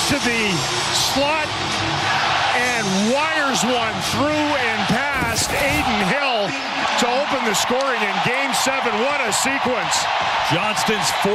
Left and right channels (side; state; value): both; identical; correlation 1.00